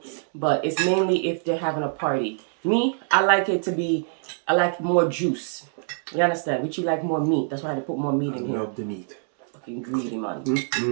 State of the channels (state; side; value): silent; left; digital silence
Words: But it's mainly if they're having a party. Me, I like more juice. You understand? Which you like more meat. That's why I had to put more meat in here. I love the meat. Fucking greedy, man.